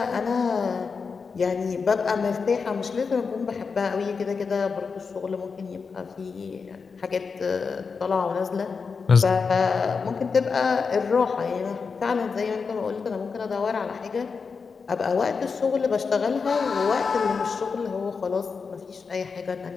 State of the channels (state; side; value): quieter; right; 5.2 dB